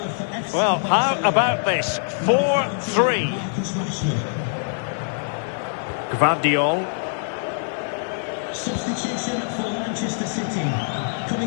Well, how about this? 4-3. Gvardiol. Substitution for Manchester City.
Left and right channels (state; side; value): silent; right; 63 dB below the other